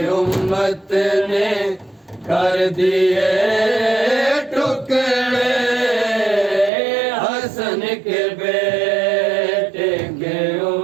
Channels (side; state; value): left; drops out; at 6.7 s